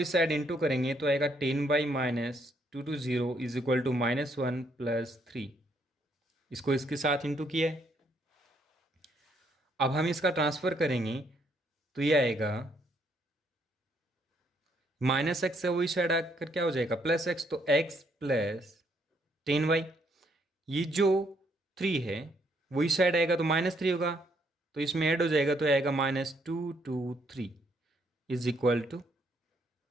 इस साइड इंटू करेंगे तो आएगा 10 by minus 2 to 0 is equal to -1 plus 3। इसको इसके साथ इंटू किया है। अब हम इसका ट्रांसफर करेंगे तो ये आएगा माइनस एक्स से वही साइड आकर क्या हो जाएगा प्लस एक्स, तो एक्स प्लस 10y। ये जो 3 है वही साइड आएगा तो -3 होगा, तो इसमें ऐड हो जाएगा तो आएगा -2 to 3 is equal to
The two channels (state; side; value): normal; both; correlation 0.71